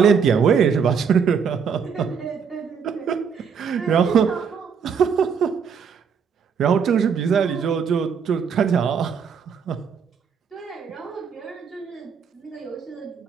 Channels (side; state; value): left; quieter; 6.5 dB